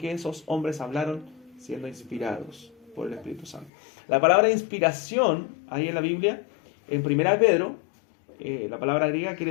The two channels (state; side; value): drops out; right; at 3.7 s